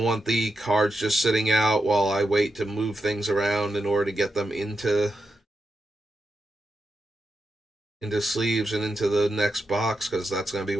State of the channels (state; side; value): normal; both; correlation 0.87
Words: want the cards just sitting out while I wait to move things around in order to get them into sleeves and into the next box, because that's going to be